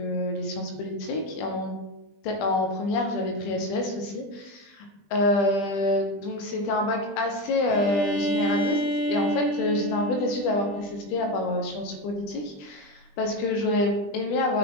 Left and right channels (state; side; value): late; right; 20 ms